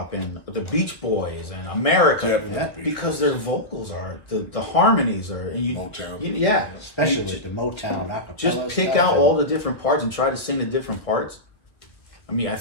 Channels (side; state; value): right; late; 1.3 ms